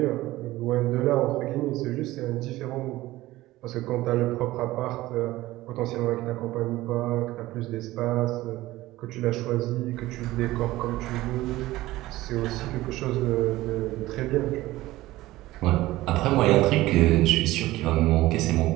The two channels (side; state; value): left; quieter; 17.3 dB